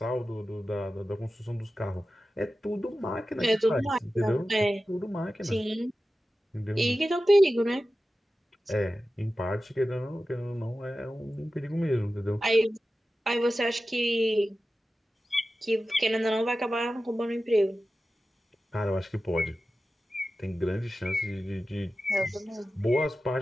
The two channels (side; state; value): both; normal; correlation 0.94